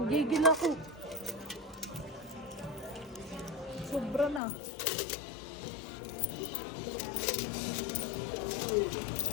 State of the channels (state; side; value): drops out; right; at 4.4 s